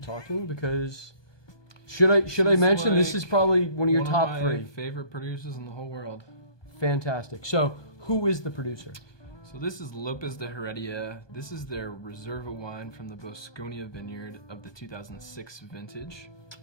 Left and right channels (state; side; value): late; right; 1.2 ms